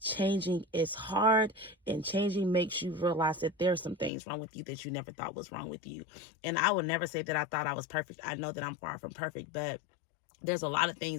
changing is hard, and changing makes you realize that there's some things wrong with you that you never thought was wrong with you. And I would never say that I thought I was perfect. I know that I'm far from perfect, but there's a lot of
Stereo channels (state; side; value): drops out; right; at 4.1 s